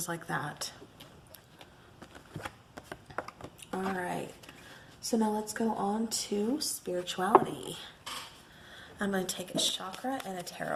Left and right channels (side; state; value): both; identical; correlation 1.00